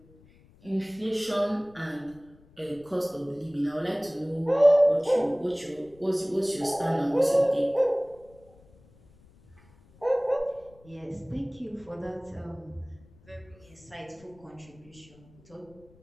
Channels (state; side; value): noise; left; rumble, 27 dB below the sound